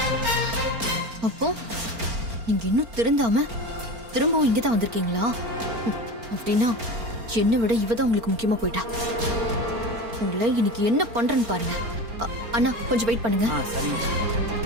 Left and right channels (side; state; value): left; late; 4.4 ms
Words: அப்போ நீங்க இன்னும் திருந்தாம திரும்பவும் இங்கதான் வந்திருக்கீங்களா? அப்படின்னா என்னை விட இவதான் உங்களுக்கு முக்கியமா போயிட்டா. உங்களை இன்னைக்கு என்ன பண்றேன்னு பாருங்க. அண்ணா கொஞ்சம் வெயிட் பண்ணுங்க. சரிங்க.